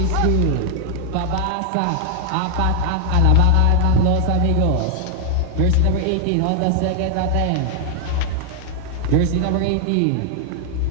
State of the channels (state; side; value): different; both; correlation 0.00